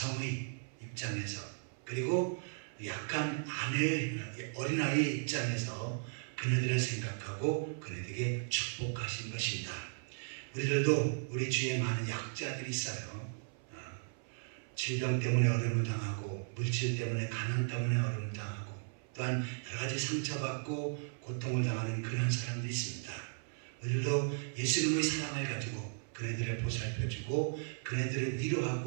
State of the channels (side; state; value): left; silent; 54 dB below the other